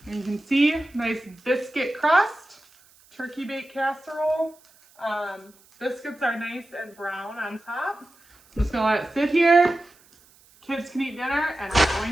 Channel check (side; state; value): right; noise; hiss, 29 dB below the sound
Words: And you can see, nice biscuit crust, turkey bake casserole. Biscuits are nice and brown on top. I'm just gonna let it sit here. Kids can eat dinner, and I'm